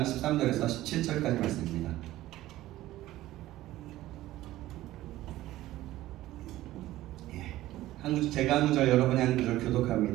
13절에서 17절까지 말씀입니다. 제가 한 구절, 여러분이 한 구절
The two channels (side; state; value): left; quieter; 15.5 dB